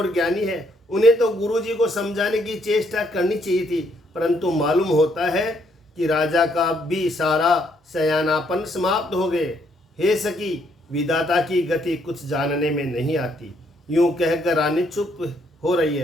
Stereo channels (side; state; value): both; normal; correlation 0.71